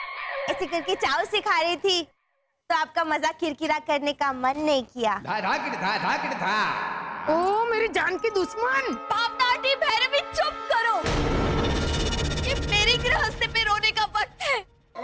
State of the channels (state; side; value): identical; both; correlation 1.00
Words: ऐसे करके चाव से खा रही थी तो आपका मजाक किरकिरा करने का मन नहीं किया। ओ मेरी जान की दुश्मन! पापनाटी भैरवी, चुप करो। ये मेरी गृहस्थी पे रोने का वक्त है।